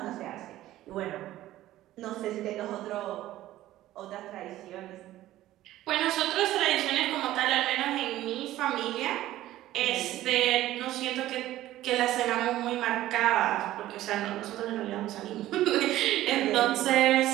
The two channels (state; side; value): quieter; left; 14.7 dB